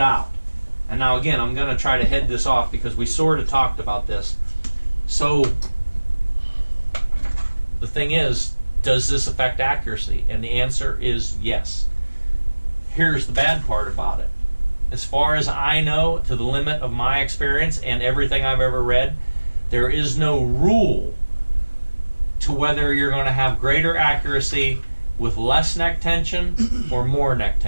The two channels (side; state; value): both; inverted; correlation -1.00